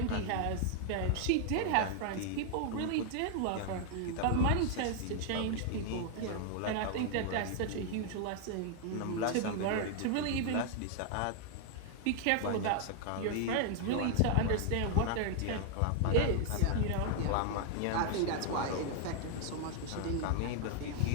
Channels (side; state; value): both; different; correlation 0.00